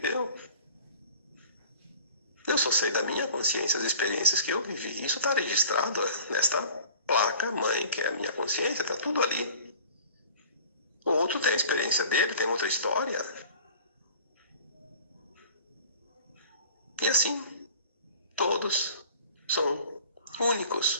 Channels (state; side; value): inverted; both; correlation -0.45